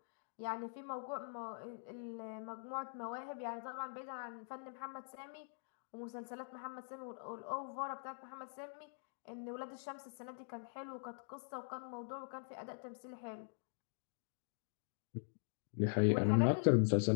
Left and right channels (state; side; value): silent; right; digital silence